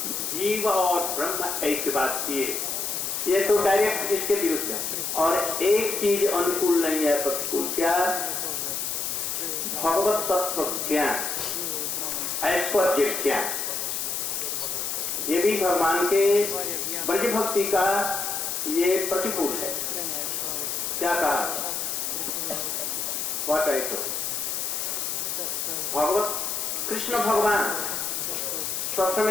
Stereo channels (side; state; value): left; noise; hiss, 2 dB below the sound